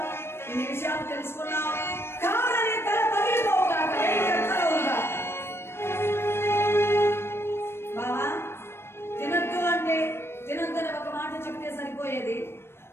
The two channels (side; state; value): right; late; 0.12 ms